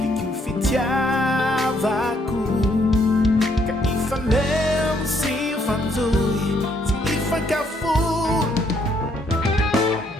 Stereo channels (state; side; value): normal; both; correlation 0.70